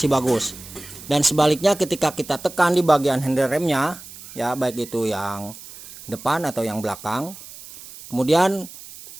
bagus. Dan sebaliknya ketika kita tekan di bagian handle remnya ya, baik itu yang depan atau yang belakang, kemudian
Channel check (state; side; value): noise; right; hiss, 16 dB below the sound